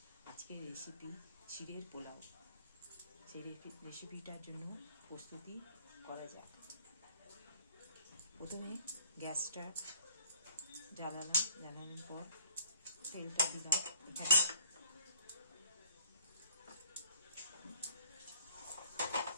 আজকের রেসিপি চিড়ের পোলাও। সেই রেসিপিটার জন্য প্রস্তুতি করা যাক। প্রথমে গ্যাসটা জ্বালালাম, জ্বালানোর পর তেলটা দিলাম।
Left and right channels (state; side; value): inverted; both; correlation -0.56